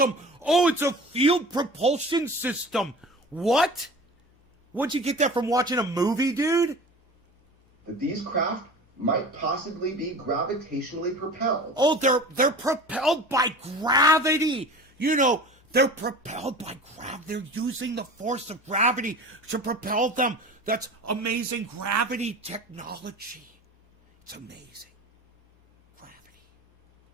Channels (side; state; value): both; normal; correlation 0.37